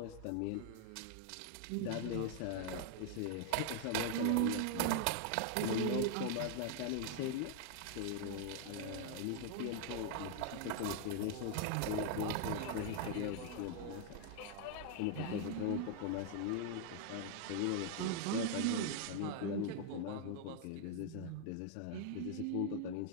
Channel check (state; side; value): different; both; correlation 0.00